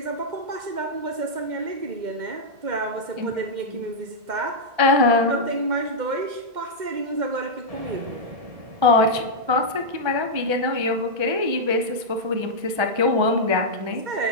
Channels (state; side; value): late; left; 1.3 ms